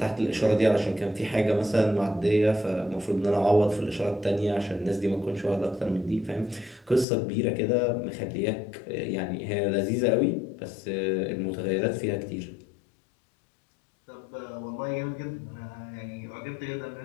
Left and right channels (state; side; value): drops out; right; at 7.1 s